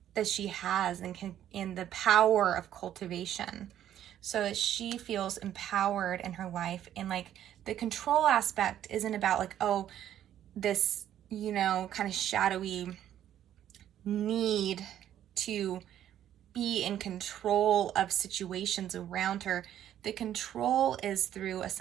that she has, and in the power of cultivation, so that she feels empowered in her life. And like, the control aspect isn't about like, oh, this, you know, kind of shadowy need to be in control of situations around her. The control is through a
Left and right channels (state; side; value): quieter; left; 11.1 dB